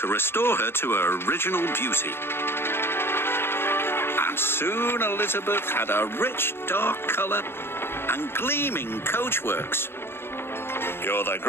restore her to her original beauty. And soon Elizabeth had a rich dark colour and gleaming coachworks. "You're the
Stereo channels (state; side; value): late; right; 0.11 ms